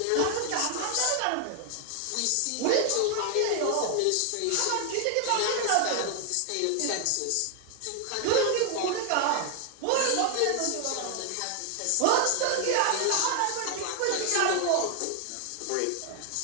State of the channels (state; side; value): different; both; correlation 0.00